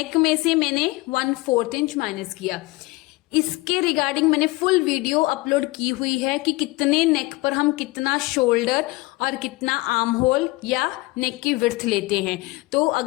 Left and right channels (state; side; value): quieter; right; 22.1 dB